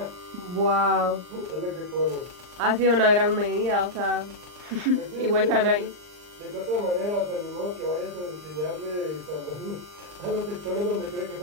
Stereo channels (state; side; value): late; left; 39 ms